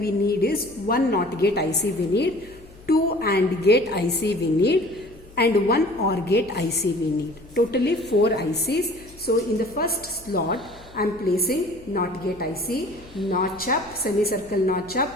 need is one NOT gate IC we need, two AND gate IC we need and one OR gate IC we need. Totally 4 ICs. So in the first slot I am placing NOT gate IC, notch up, semicircle notch up,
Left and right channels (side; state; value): left; noise; hum, 22 dB below the sound